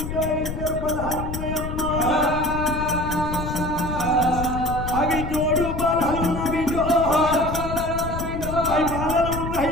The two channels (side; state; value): left; noise; rumble, 6 dB below the sound